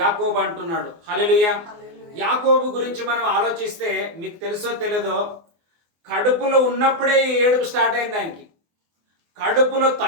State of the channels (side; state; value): left; late; 24 ms